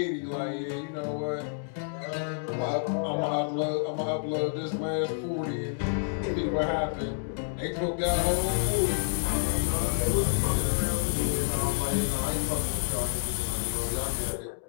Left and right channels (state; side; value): silent; right; digital silence